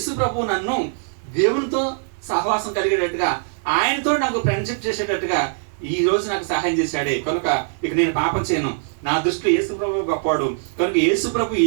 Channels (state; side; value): silent; left; 65 dB below the other